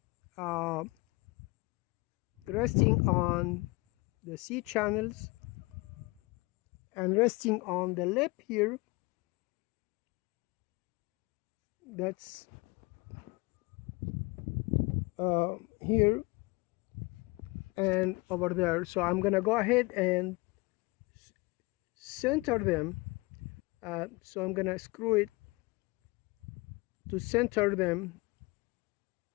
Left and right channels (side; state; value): right; quieter; 24.6 dB